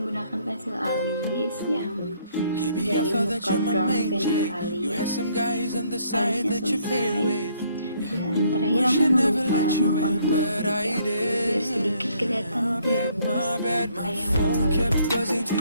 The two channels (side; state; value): both; inverted; correlation -0.66